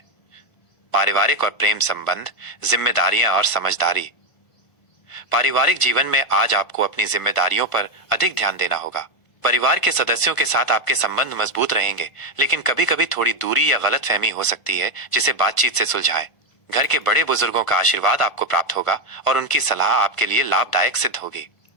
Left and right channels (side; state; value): right; late; 1.5 ms